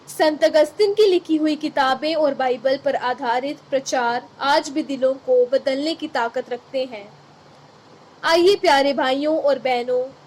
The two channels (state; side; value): identical; both; correlation 1.00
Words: संत अगस्तिन की लिखी हुई किताबें और बाइबल पर आधारित प्रचार आज भी दिलों को बदलने की ताकत रखते हैं। आइए प्यारे भाइयों और बहनों,